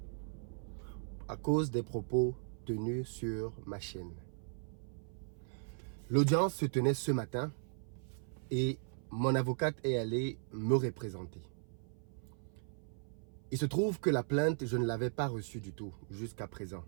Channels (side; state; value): left; silent; 53 dB below the other